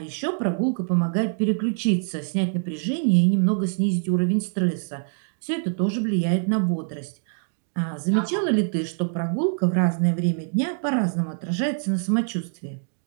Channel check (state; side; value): silent; left; digital silence